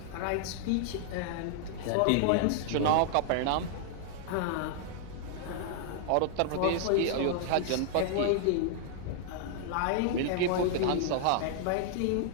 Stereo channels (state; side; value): different; both; correlation -0.01